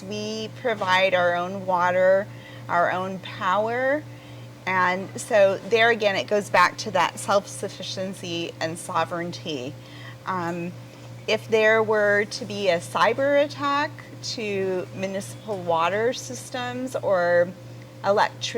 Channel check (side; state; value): both; identical; correlation 1.00